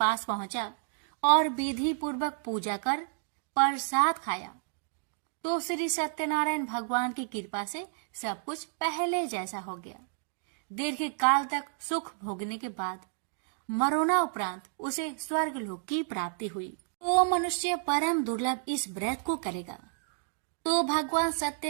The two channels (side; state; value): left; silent; digital silence